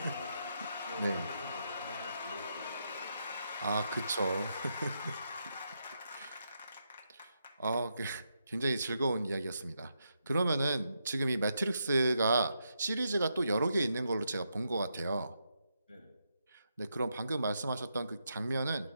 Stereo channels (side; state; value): both; inverted; correlation -0.82